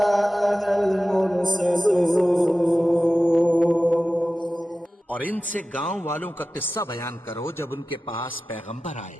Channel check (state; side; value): normal; both; correlation 0.95